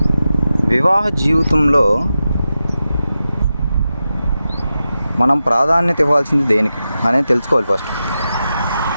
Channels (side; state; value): both; inverted; correlation -0.91